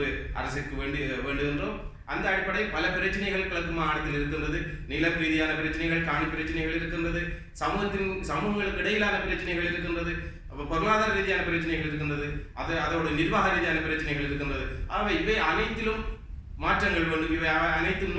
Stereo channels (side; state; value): both; identical; correlation 1.00